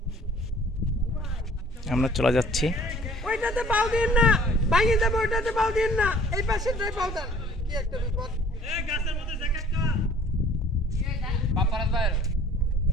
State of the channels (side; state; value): both; normal; correlation 0.53